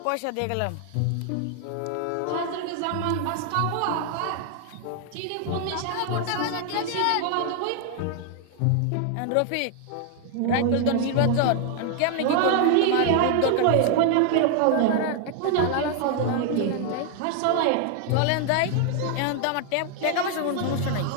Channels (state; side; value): different; both; correlation 0.00